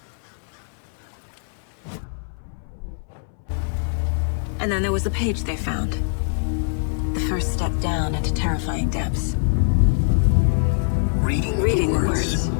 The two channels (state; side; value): silent; right; 63 dB below the other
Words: And then there was the page they found. The first step down into terrifying depths. Reading the words.